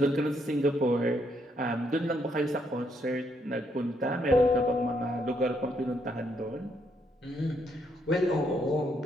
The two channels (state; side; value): normal; both; correlation 0.74